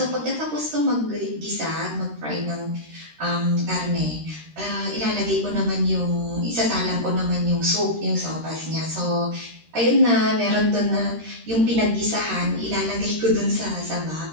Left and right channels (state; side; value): late; left; 13 ms